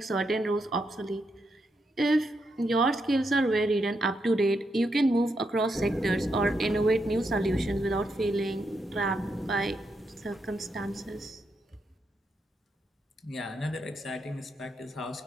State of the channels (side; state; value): both; normal; correlation 0.82